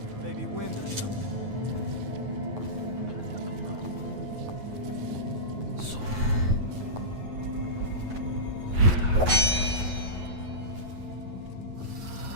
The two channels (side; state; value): left; late; 9.3 ms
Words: Maybe wind or something.